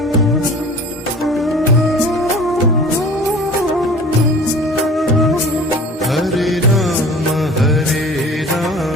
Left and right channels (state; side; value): normal; both; correlation 0.43